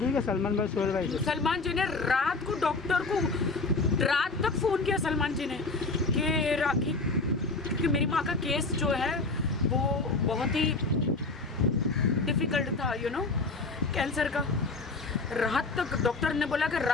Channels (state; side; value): quieter; right; 3.6 dB